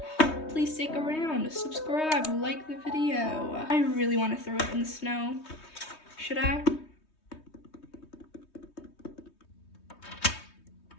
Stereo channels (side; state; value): right; late; 3.2 ms